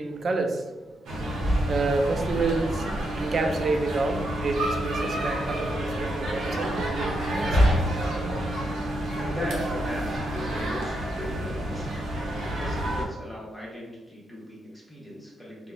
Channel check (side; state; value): both; normal; correlation 0.81